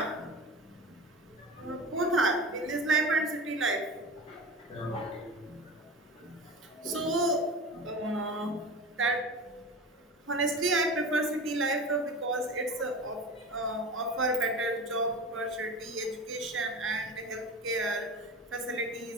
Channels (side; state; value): both; normal; correlation 0.31